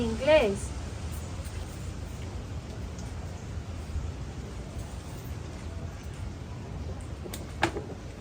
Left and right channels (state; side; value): identical; both; correlation 1.00